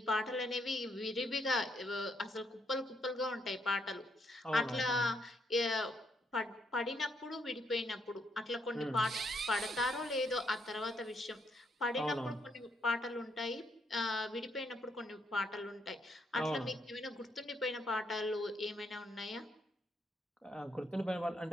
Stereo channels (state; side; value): normal; both; correlation 0.75